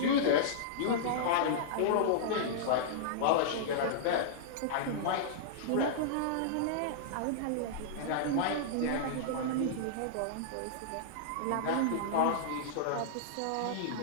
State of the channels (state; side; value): different; both; correlation -0.02